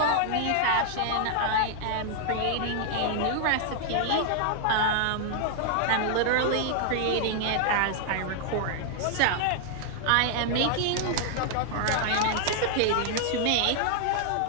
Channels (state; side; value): different; both; correlation 0.00